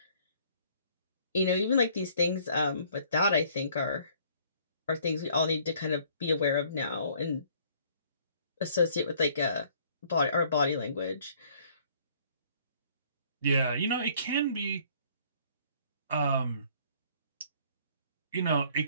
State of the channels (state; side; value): inverted; both; correlation -0.60